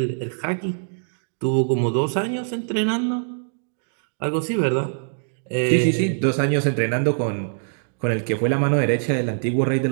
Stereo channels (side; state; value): left; silent; digital silence